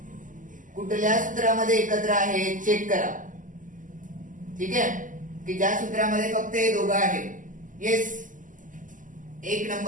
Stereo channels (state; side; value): late; left; 0.38 ms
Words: कुठल्या सूत्रामध्ये एकत्र आहे चेक करा. ठीक आहे की ज्या सूत्रामध्ये फक्त हे दोघं आहेत. येस 1